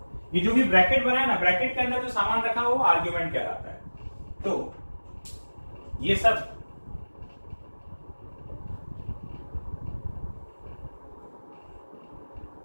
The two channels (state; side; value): inverted; both; correlation -1.00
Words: जो भी ब्रैकेट बना है ना, ब्रैकेट के अंदर जो सामान रखा है वो आर्ग्यूमेंट कहलाता है। तो ये सब